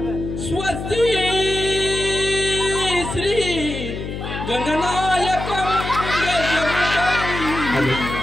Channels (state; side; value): noise; left; hum, 7 dB below the sound